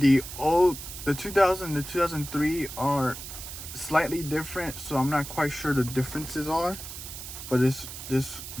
2000 to 2003 are slightly different, so I'm not quite sure the differences are, but this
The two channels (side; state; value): right; noise; hiss, 10 dB below the sound